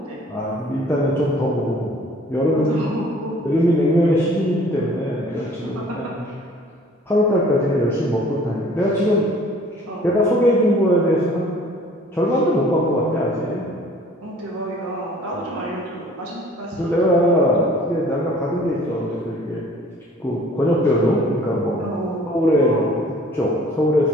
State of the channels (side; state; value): both; normal; correlation 0.52